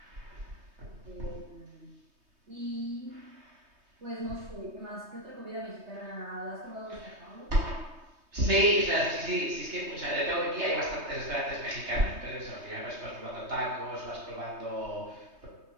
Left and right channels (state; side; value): late; left; 3.3 ms